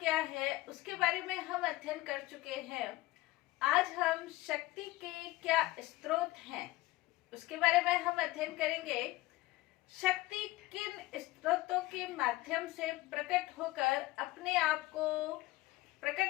है, उसके बारे में हम अध्ययन कर चुके हैं। आज हम शक्ति के क्या स्रोत हैं उसके बारे में हम अध्ययन करेंगे। शक्ति किन स्रोतों के माध्यम से प्रकट होकर अपने आप को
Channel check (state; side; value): quieter; right; 18.7 dB